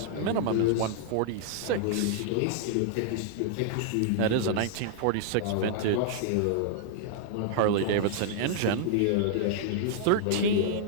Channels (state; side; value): different; both; correlation -0.01